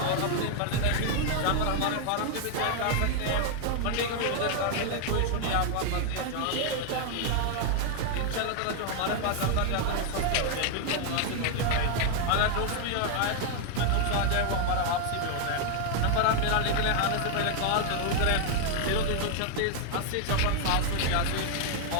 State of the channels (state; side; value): different; both; correlation 0.00